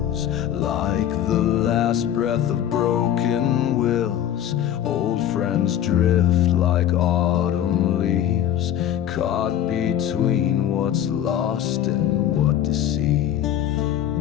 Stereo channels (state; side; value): quieter; right; 10.9 dB